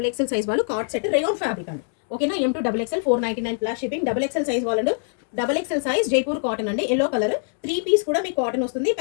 సైజ్ వాళ్ళు కార్డ్ సెట్ రేయాన్ ఫ్యాబ్రిక్ అండి. ఓకేనా, M2 XXL 499 plus shipping. XXL size వాళ్ళు XXL సైజ్ జైపూర్ కాటన్ అండి. ఎల్లో కలర్ 3 పీస్ కూడా మీకు కాటన్ వస్తుంది.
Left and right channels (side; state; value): right; silent; 63 dB below the other